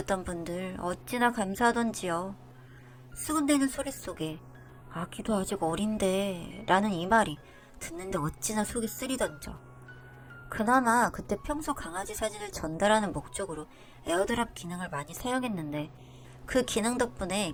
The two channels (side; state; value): both; identical; correlation 1.00